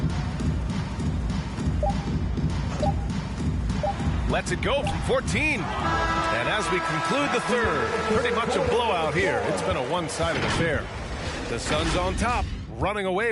Lets it go from 14. And as we conclude the third, pretty much a blowout here. It's been a one-sided affair. The Suns on top, running away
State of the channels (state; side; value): identical; both; correlation 1.00